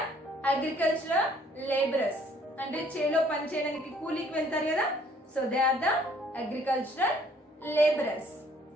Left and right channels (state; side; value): normal; both; correlation 0.61